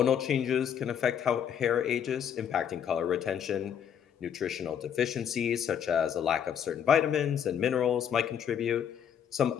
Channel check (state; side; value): quieter; right; 8.5 dB